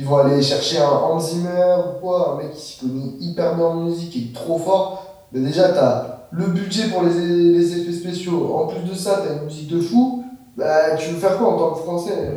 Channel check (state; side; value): identical; both; correlation 1.00